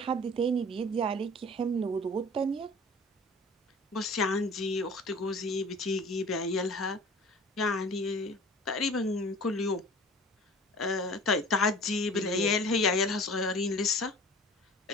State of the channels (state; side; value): normal; both; correlation 0.44